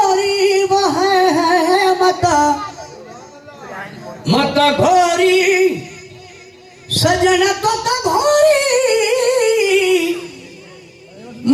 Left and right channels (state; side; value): identical; both; correlation 1.00